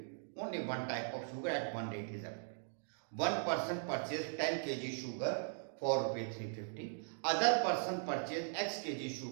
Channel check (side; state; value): left; silent; digital silence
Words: Only one type of sugar at one rate is available. One person purchased 10 kg sugar for rupees 350. Other person purchased X kg